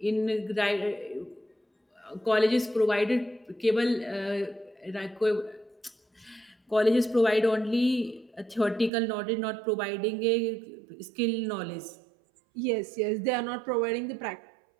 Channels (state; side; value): drops out; left; at 8.9 s